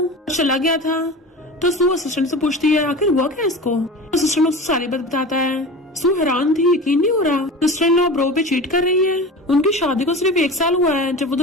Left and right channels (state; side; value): normal; both; correlation 0.33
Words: चला गया था तो सू असिस्टेंट से पूछती है आखिर हुआ क्या इसको। असिस्टेंट उसको सारी बात बताता है। सू हैरान थी, यकीन नहीं हो रहा सिस्टर इन लॉ ब्रो पे चीट कर रही है। उनकी शादी को सिर्फ 1 साल हुआ है, जब वो